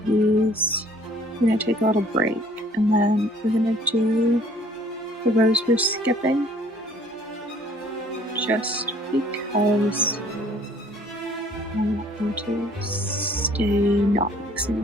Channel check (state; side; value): normal; both; correlation 0.57